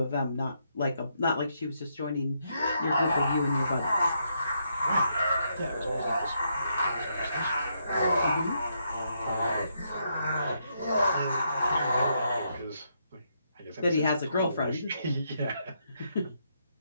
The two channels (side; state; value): both; inverted; correlation -0.77